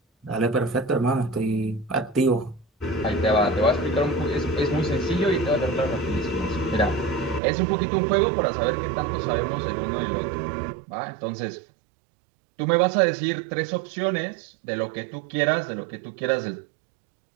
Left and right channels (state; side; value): drops out; left; at 7.4 s